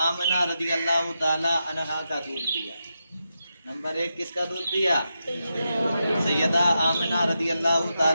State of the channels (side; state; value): both; inverted; correlation -0.87